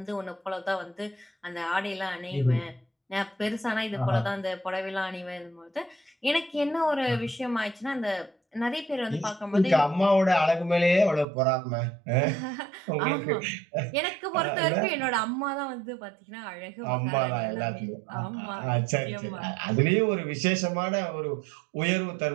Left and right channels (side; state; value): left; drops out; at 11.2 s